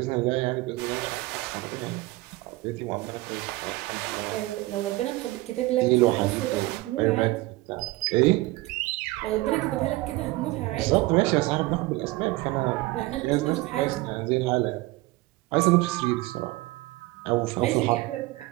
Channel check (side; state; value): left; quieter; 19.9 dB